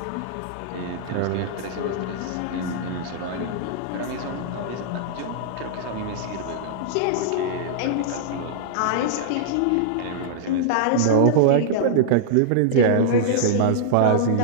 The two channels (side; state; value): both; different; correlation -0.02